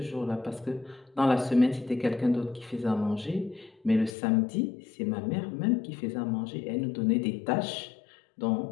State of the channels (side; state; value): right; drops out; at 4.1 s